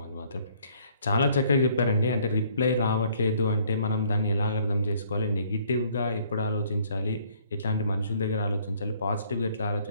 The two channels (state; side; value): inverted; both; correlation -0.62